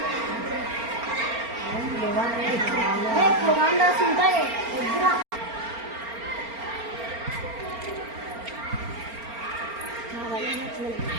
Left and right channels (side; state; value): left; late; 4.3 ms